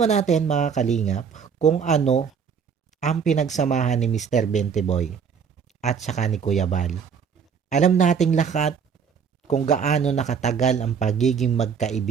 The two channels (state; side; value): quieter; left; 6.7 dB